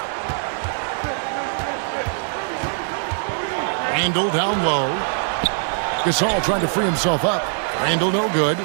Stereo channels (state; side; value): silent; left; 64 dB below the other